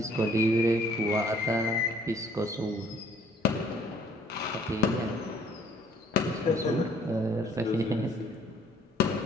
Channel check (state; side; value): normal; both; correlation 0.59